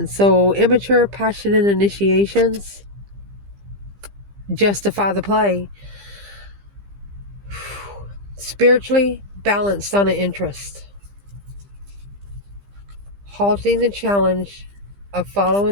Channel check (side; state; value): left; late; 15 ms